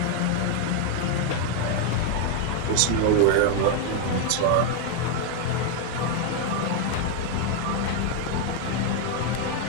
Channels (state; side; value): different; both; correlation 0.01